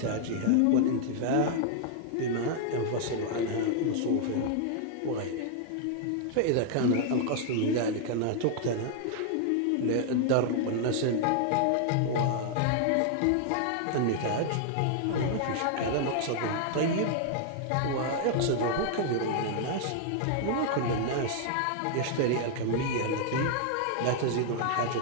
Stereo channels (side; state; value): both; different; correlation -0.01